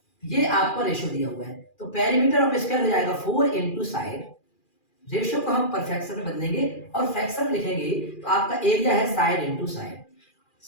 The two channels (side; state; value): right; late; 2.4 ms